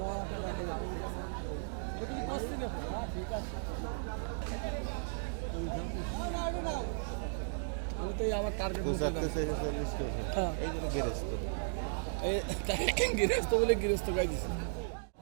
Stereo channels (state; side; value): silent; left; digital silence